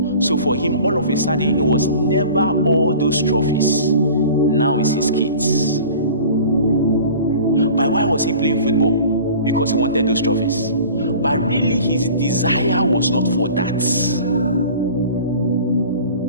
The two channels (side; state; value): both; inverted; correlation -0.42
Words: So for him, all of a sudden, it was never all those trophies. Now it's his kids. But why was he playing football? Because he wanted those trophies. But really, his desire was not for that.